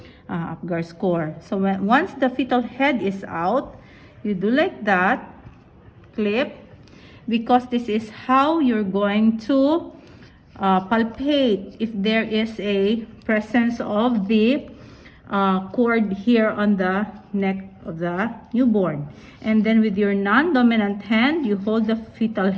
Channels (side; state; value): both; identical; correlation 1.00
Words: Apgar score. So once the fetal head is out, you do like that, clip, because this is how you're going to palpate if there is a presence of the cord here on the neck of the newborn. And then with your non-dominant hand, you hold the fetal